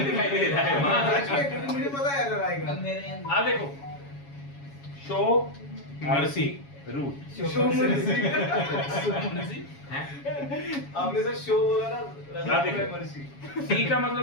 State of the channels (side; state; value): right; late; 7.2 ms